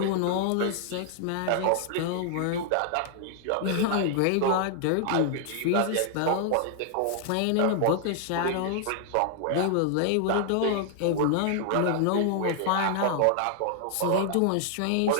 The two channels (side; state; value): both; different; correlation -0.01